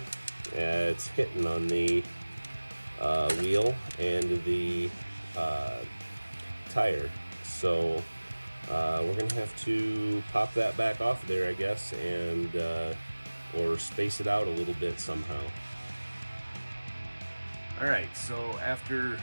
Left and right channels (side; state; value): both; inverted; correlation -1.00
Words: it's hitting on the wheel and the tire. So We're going to have to pop that back off there, I guess, and or space it out a little bit somehow. Alright, so after